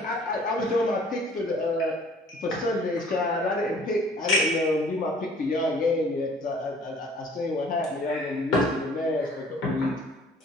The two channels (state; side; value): normal; both; correlation 0.53